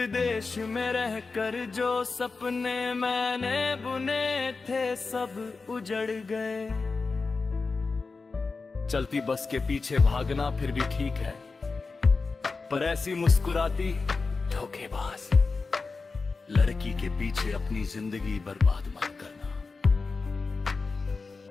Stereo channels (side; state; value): right; quieter; 4.2 dB